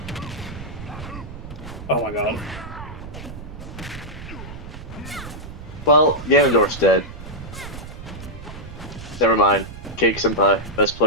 Oh my god. Well, Ganondorf's dead. Never mind. Cake Senpai, best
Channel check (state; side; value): noise; right; rumble, 12 dB below the sound